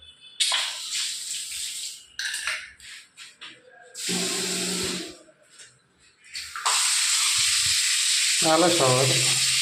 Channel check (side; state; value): both; identical; correlation 1.00